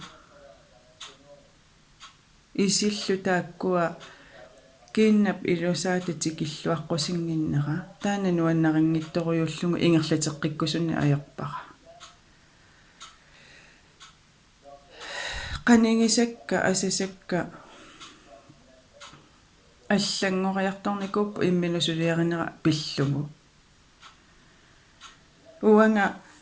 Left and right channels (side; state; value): both; identical; correlation 1.00